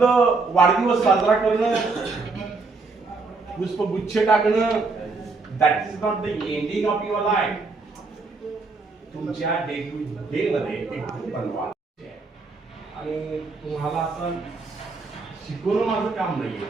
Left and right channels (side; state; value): left; quieter; 4.0 dB